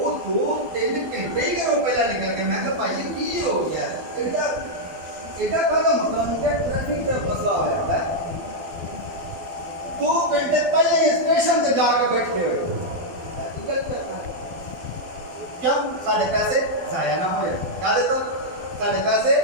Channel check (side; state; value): left; late; 12 ms